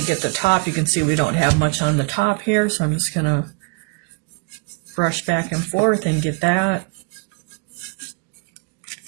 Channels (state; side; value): quieter; left; 32.2 dB